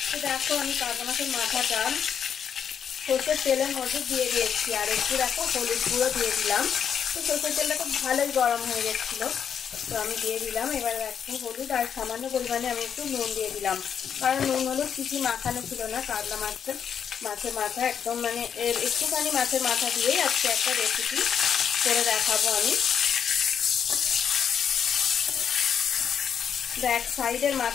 তো দেখো আমি কাতলা মাছের মাথাটা সর্ষের তেলের মধ্যে দিয়ে দিয়েছি আর একটু দেখো হলুদ গুঁড়ো দিয়ে দিলাম। তো সর্ষের তেলটা খুব ভালোই গরম হয়ে গেছিল, তো আমি দিয়ে দিলাম। এবার একটু হলুদ আর সামান্য পরিমাণে আমি একটু নুন দিয়ে দিলাম, কারণ নুন হলুদ কিছু মাখানো ছিল না। কাতলা মাছের মাথা একদম মানে একটুখানি মাছের মাথা দিয়েই আজকে একটা রেসিপি করে দেখাবো আমি। ব্যাক সাইডের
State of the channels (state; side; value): quieter; right; 7.9 dB